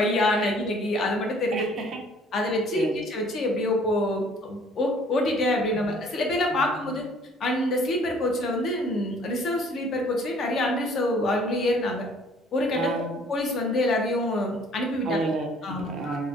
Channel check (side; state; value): both; normal; correlation 0.57